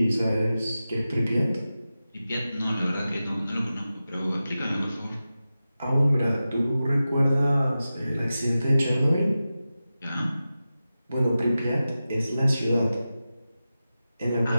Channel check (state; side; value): inverted; both; correlation -0.94